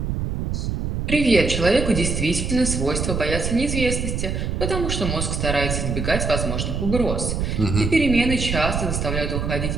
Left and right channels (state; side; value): noise; right; rumble, 2 dB below the sound